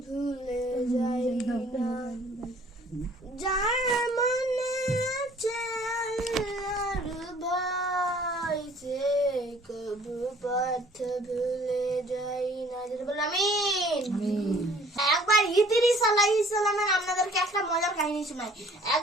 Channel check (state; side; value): normal; both; correlation 0.55